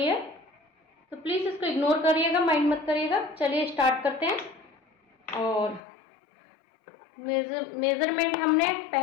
है, तो प्लीज इसको इग्नोर करिएगा, माइंड मत करिएगा। चलिए स्टार्ट करते हैं। और मेजरमेंट हमने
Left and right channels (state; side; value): drops out; right; at 5.8 s